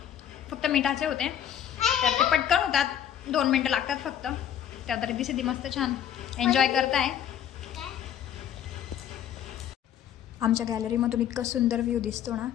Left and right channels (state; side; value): quieter; right; 10.0 dB